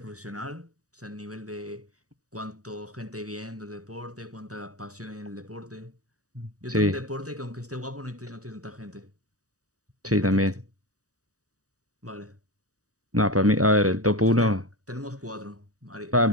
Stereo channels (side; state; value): left; late; 0.66 ms